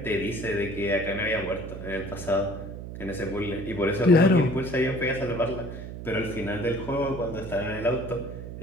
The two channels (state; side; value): noise; right; hum, 10 dB below the sound